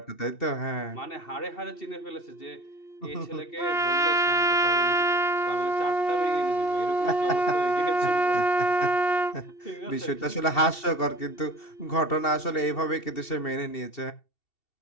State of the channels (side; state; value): right; late; 2.7 ms